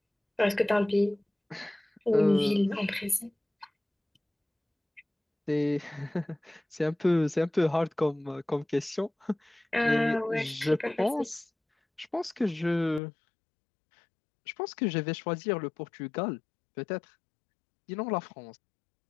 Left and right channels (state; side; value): drops out; right; at 13.0 s